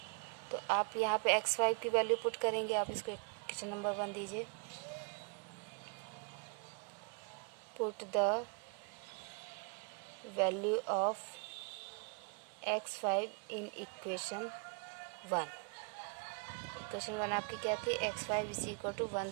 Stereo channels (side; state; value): left; quieter; 38.1 dB